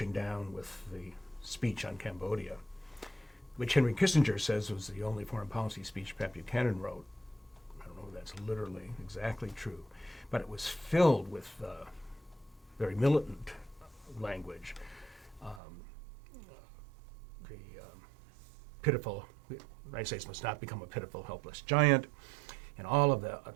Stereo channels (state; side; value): drops out; left; at 15.6 s